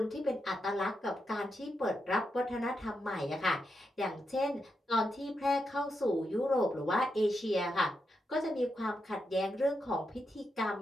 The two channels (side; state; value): both; normal; correlation 0.85